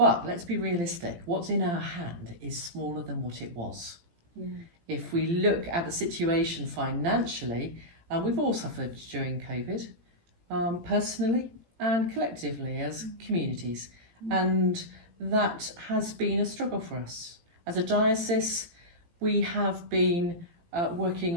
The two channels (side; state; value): left; late; 18 ms